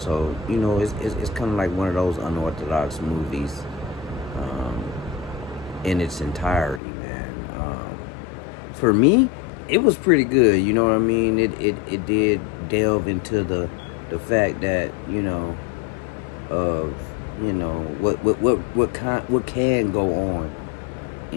you know, it's kind of like one of those unorthodox movies in its entirety, man. For me, it was pretty good, you know what I mean? It did delve into the fact that, you know, of, you know, what can go on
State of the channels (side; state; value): right; drops out; at 6.8 s